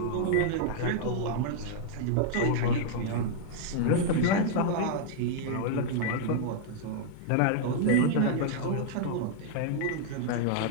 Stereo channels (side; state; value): both; different; correlation -0.01